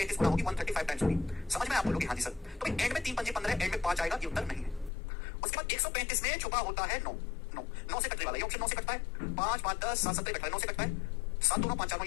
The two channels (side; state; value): right; drops out; at 4.9 s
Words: गुना होगी, 135 टाइम्स होगी। समझ में? आप बोलोगे हाँ जी सर। तो एंड में 3 5 15, एंड में 5 आएगा, ये उत्तर नहीं है। उसके बाद 135 में छुपा होता है 9, 9 से कटने वाला, ये ऑप्शन 9 से कटता है। 5 5 10 7 17 कटता है, 9 से कटता है। 7 2 9 5 4